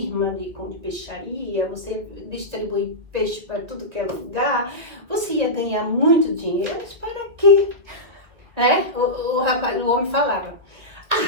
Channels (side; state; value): left; late; 1.8 ms